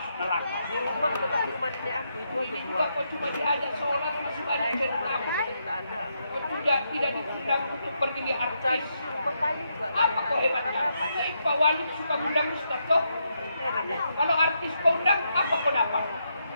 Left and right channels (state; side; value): inverted; both; correlation -0.80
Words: neraka. Di rumah itu Ini juga kau cuma diajak sholat masih banyak yang takut. Kau tidak diundang untuk pergi lihat artis. Apa kau hebatnya? Pak Wali suka undang ustaz kau. Kalau artis kau undang, apa kau dapat?